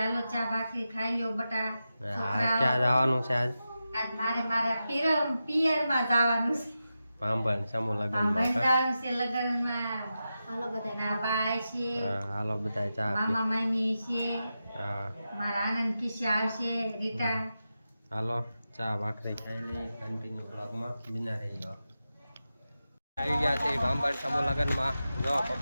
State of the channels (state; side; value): inverted; both; correlation -0.91